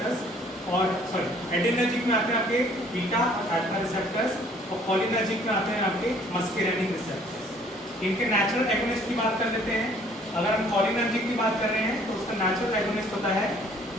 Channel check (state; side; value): normal; both; correlation 0.58